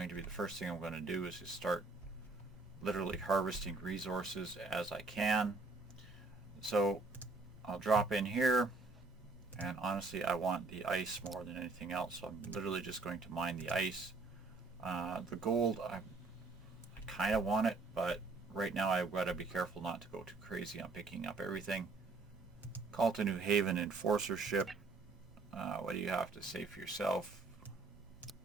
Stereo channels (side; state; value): left; quieter; 3.8 dB